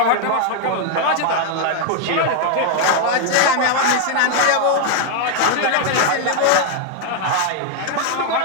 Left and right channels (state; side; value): different; both; correlation 0.00